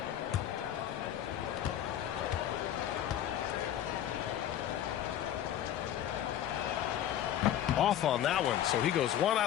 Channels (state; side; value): quieter; right; 11.1 dB